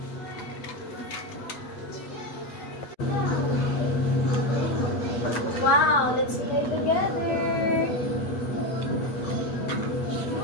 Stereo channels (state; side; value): late; right; 8.3 ms